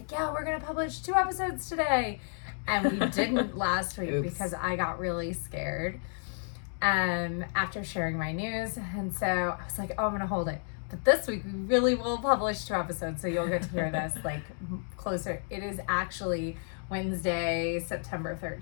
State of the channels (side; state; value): right; silent; 57 dB below the other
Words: yeah, we're going to publish 2 episodes today. And we didn't last week Oops. because I got really scared after sharing my news. And so I was like, oh, I'm going to hold it. But this week we really will publish 2 episodes. So you'll get to hear this like closer. It is actually Wednesday, September